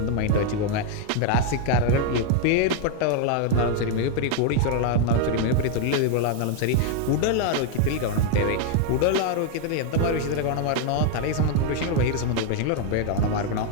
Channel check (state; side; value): different; both; correlation 0.00